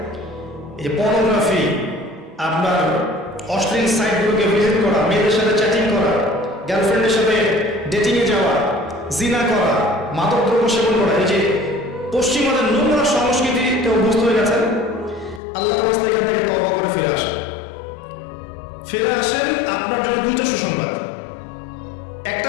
এই যে পর্নোগ্রাফি, আপনার অশ্লীল সাইটগুলোকে ভিজিট করা, মেয়েদের সাথে চ্যাটিং করা, গার্লফ্রেন্ডের সাথে ডেটিংয়ে যাওয়া, জিনা করা, মাদকদ্রব্য সেবন করা, এই যে পশ্চিমাদের নোংরা সংস্কৃতিতে অভ্যস্ত হয়ে গেছেন। আল্লাহর রাস্তায় এখান থেকে তওবা করে ফিরে আসেন। আপনার জন্য দুটো সুসংবাদ।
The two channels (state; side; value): drops out; right; at 15.4 s